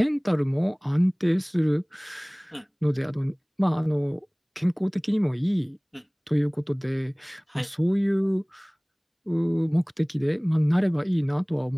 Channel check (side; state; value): both; identical; correlation 1.00